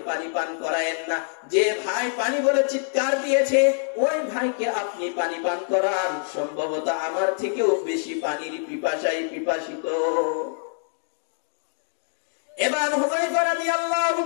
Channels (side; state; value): right; silent; digital silence